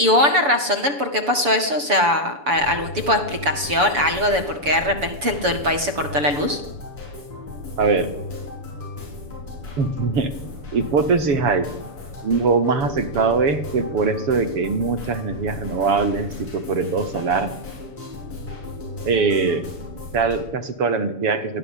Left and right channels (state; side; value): late; left; 7.0 ms